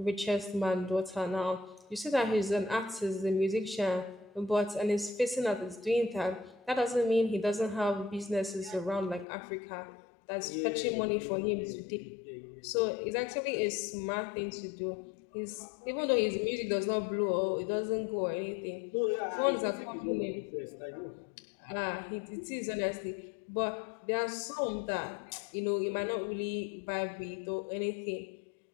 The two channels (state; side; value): drops out; right; at 9.2 s